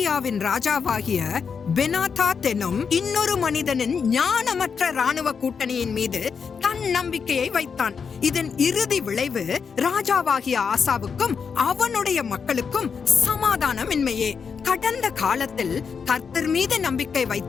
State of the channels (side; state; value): right; quieter; 6.1 dB